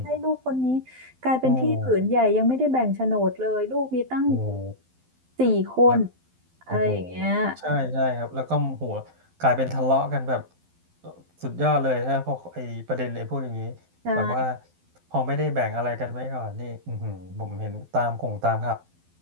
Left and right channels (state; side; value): late; left; 12 ms